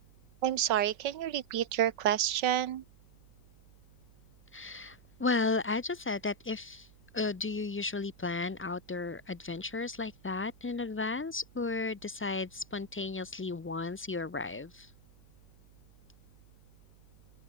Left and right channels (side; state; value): right; noise; hum, 26 dB below the sound